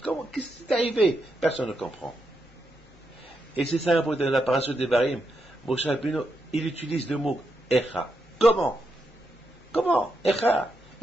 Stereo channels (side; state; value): both; normal; correlation 0.83